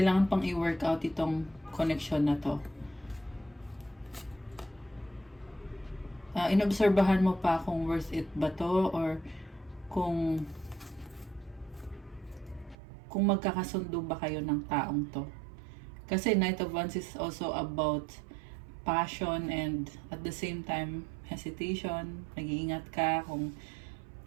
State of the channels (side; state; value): left; drops out; at 12.8 s